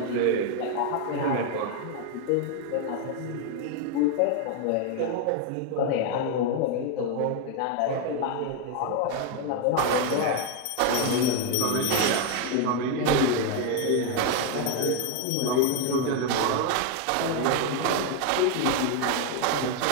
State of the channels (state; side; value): different; both; correlation 0.01